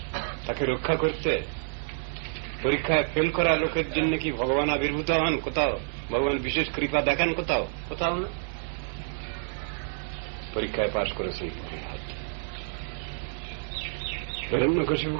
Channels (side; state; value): left; silent; 59 dB below the other